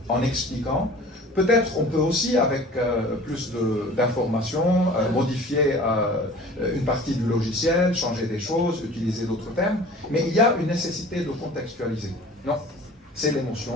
en expliquant. Peut-être on peut aussi, avec plus d'informations, modifier une partie du logiciel, changer des choses, utiliser d'autres termes, mais il y a une nécessité de contextualiser. Non, c'est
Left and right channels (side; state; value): both; normal; correlation 0.44